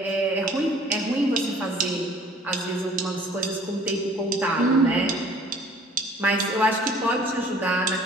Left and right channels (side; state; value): both; normal; correlation 0.53